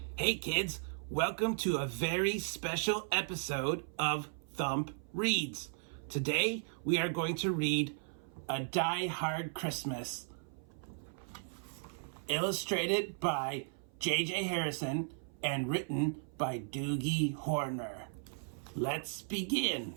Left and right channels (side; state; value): left; silent; 54 dB below the other